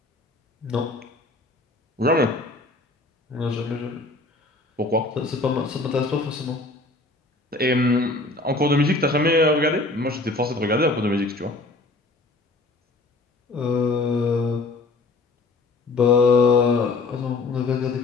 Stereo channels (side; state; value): right; quieter; 3.3 dB